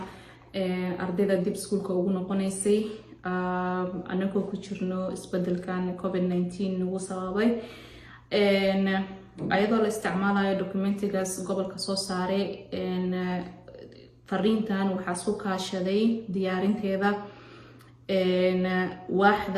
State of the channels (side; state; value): both; identical; correlation 1.00